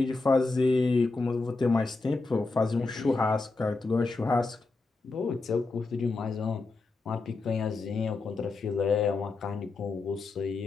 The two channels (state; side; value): quieter; right; 3.7 dB